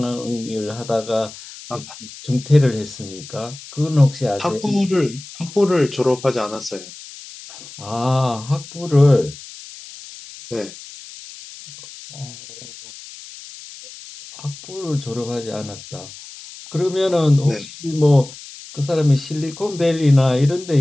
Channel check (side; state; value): left; noise; hiss, 16 dB below the sound